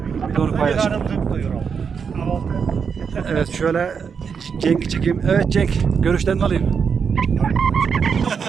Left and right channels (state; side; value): quieter; left; 6.3 dB